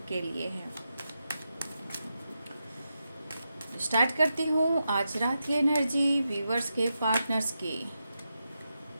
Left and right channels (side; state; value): both; inverted; correlation -0.87